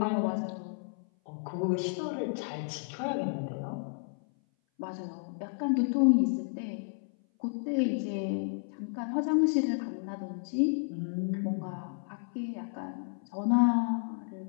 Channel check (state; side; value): silent; right; 56 dB below the other